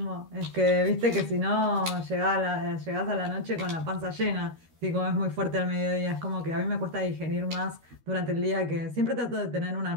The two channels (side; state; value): left; late; 13 ms